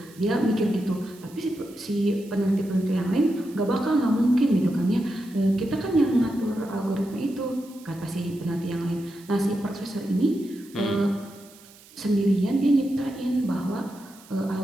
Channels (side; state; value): right; noise; hiss, 23 dB below the sound